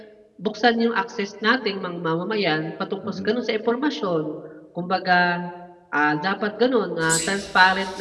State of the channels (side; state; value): both; identical; correlation 1.00